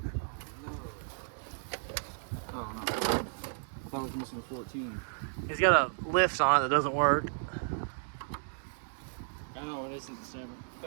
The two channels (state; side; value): silent; left; digital silence